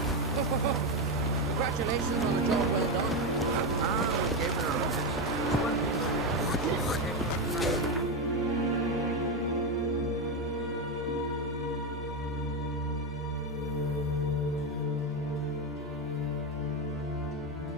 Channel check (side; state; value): both; normal; correlation 0.10